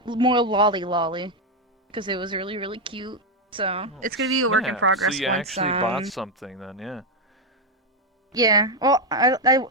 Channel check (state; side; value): normal; both; correlation 0.04